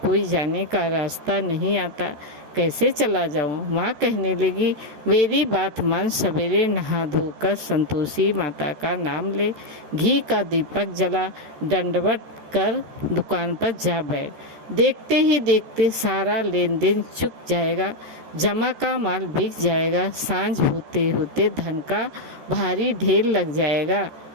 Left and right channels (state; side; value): late; left; 14 ms